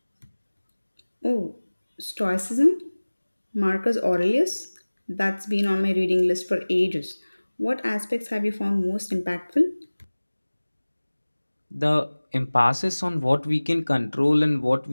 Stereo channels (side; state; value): both; inverted; correlation -1.00